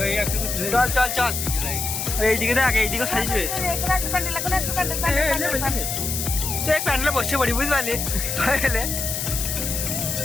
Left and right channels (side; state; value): left; noise; hiss, 3 dB below the sound